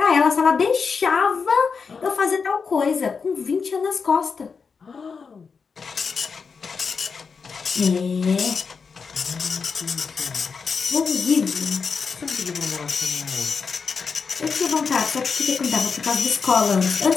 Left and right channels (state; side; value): quieter; right; 5.4 dB